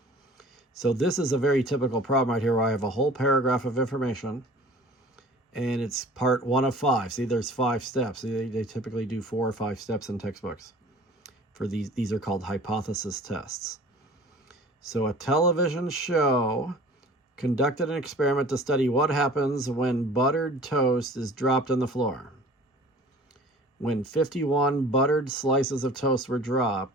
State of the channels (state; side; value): normal; both; correlation 0.45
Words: So this is a very typical problem right here where I have a whole paragraph of information, and it's part 1 of 5. See, there's 5 steps. They typically do 4 or 5 steps in textbooks. For these are called hypothesis tests. So a television show conducted an experiment to study what happens when buttered toast is dropped on the floor. When 51 buttered slices of toast were